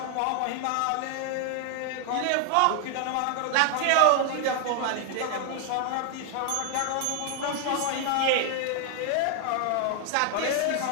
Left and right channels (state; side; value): different; both; correlation 0.00